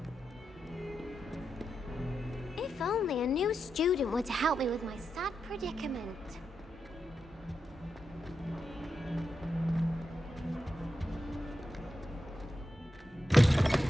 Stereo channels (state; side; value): normal; both; correlation 0.87